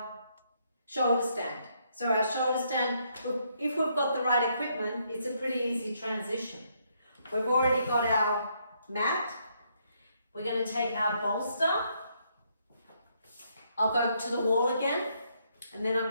shoulder stand. So our shoulder stand, if we've got the right equipment, it's a pretty easy transition. We've already got our mat. We're going to take our bolster. I'll go to the wall again, and then I'm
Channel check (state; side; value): inverted; both; correlation -0.73